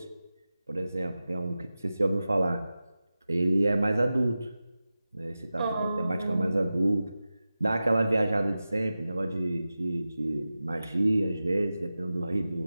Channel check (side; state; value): both; inverted; correlation -0.94